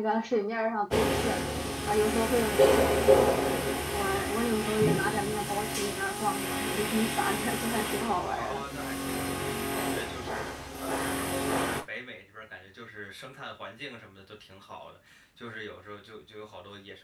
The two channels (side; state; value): both; identical; correlation 1.00